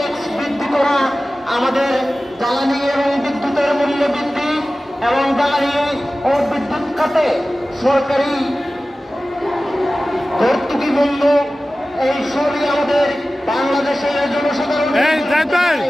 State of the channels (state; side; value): normal; both; correlation 0.96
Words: বৃদ্ধি করা, আমাদের জ্বালানি এবং বিদ্যুতের মূল্য বৃদ্ধি এবং জ্বালানি ও বিদ্যুৎ খাতে সরকারি ভর্তুকি বন্ধ, এই সবই আমাদের বাংলাদেশের জনসাধারণের,